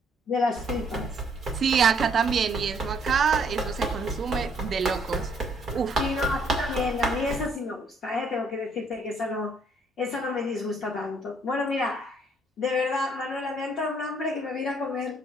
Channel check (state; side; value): normal; both; correlation 0.66